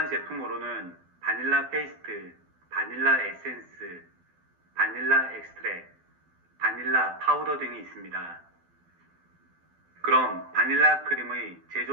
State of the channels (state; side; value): late; left; 12 ms